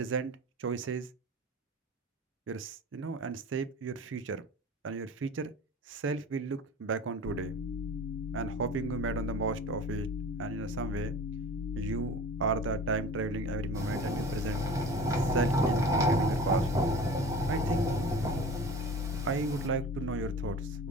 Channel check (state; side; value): normal; both; correlation 0.38